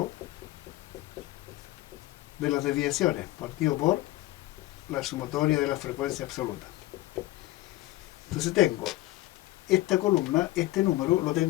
de las desviaciones, partido por la sumatoria de la frecuencia absoluta. Entonces tengo esta columna, este número lo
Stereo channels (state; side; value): quieter; right; 17.4 dB